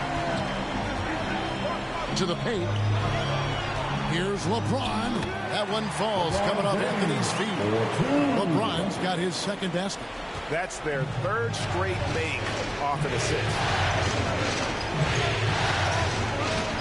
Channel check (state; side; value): identical; both; correlation 1.00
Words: To the paint. Here's LeBron. That one falls, coming off Anthony's feet. LeBron's got his second basket. That's their third straight make off an assist.